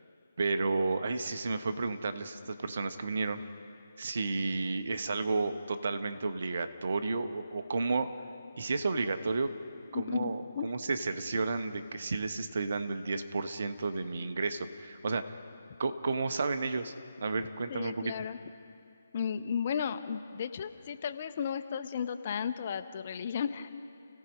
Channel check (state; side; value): inverted; both; correlation -0.84